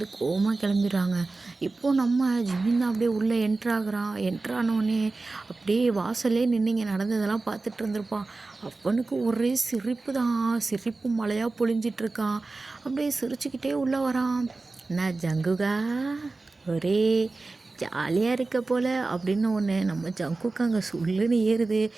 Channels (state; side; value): quieter; left; 3.5 dB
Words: கோவமாக கிளம்பிடுறாங்க. இப்போது நம்ம ஜிமின் தான் அப்படியே உள்ளே என்ட்ரானோடனே அப்படியே வாசல்லே நின்று நடந்ததெல்லாம் பார்த்துட்டு இருந்திருப்பான். அவனுக்கு ஒரே சிரிப்பு தான், சிரிப்பு மழையாக பொழிஞ்சிட்ருக்கான். அப்படியே சிரிச்சுக்கிட்டே உள்ளே வரான். நான் ஜங்குகா ஒரே ஜாலியாக இருக்க போல் அப்படின்னு ஒன்று நம்ம ஜங்குக்கு அங்கே சொல்லுன்னு ஏறுது.